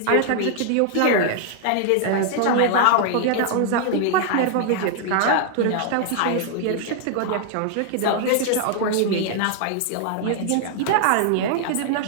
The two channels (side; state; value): both; different; correlation 0.00